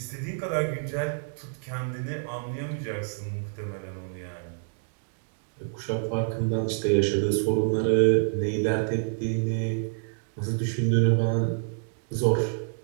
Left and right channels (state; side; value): silent; left; digital silence